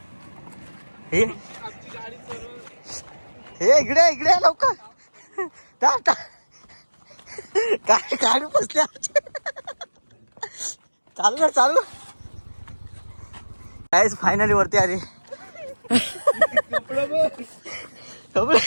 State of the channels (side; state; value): both; inverted; correlation -1.00